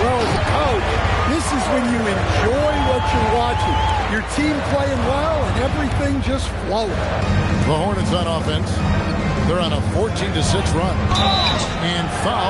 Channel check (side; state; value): both; identical; correlation 1.00